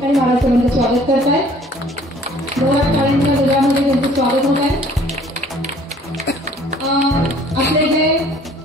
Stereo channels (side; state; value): both; normal; correlation 0.55